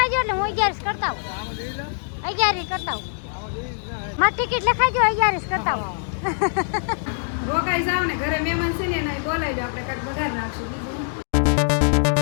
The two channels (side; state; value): right; silent; digital silence